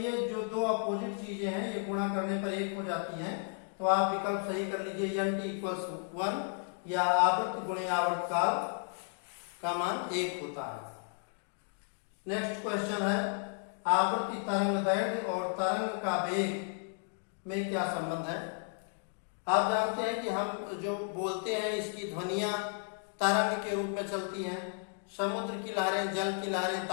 जो दो अपोजिट चीजें हैं ये गुणा करने पर 1 हो जाती हैं। तो आप विकल्प सही कर लीजिए, n t = 1 या आवृत्ति गुणे आवर्तकाल का मान 1 होता है। नेक्स्ट क्वेश्चन है, आवृत्ति तरंग दैर्घ्य और तरंग का वेग में क्या संबंध है। आप जानते हैं कि हम जो बोलते हैं इसकी ध्वनियां तरंग के रूप में चलती हैं। समुद्र की लहरें, जल की लहरें,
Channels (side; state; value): right; silent; 55 dB below the other